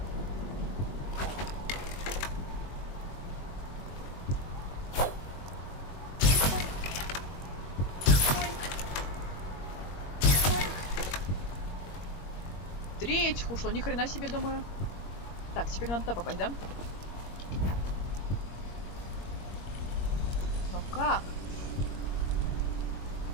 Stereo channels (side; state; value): right; late; 21 ms